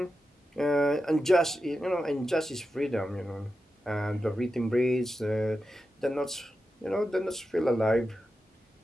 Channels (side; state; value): both; normal; correlation 0.90